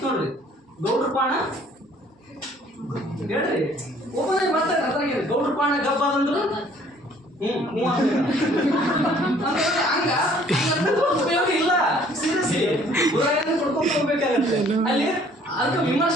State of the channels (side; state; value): both; normal; correlation 0.58